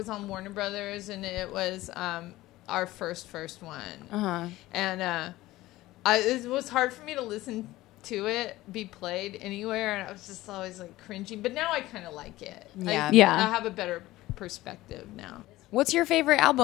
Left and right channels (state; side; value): quieter; right; 17.3 dB